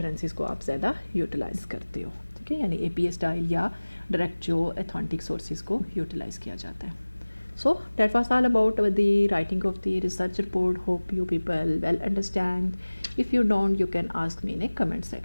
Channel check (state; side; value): inverted; both; correlation -1.00